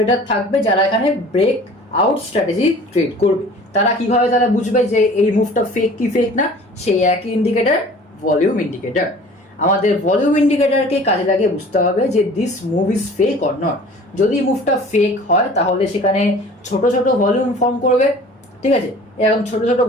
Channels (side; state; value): both; normal; correlation 0.46